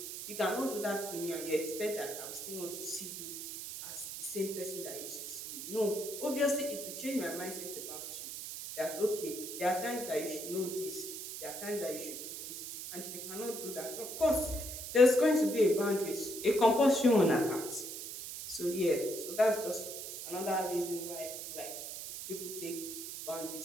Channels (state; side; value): noise; right; hiss, 8 dB below the sound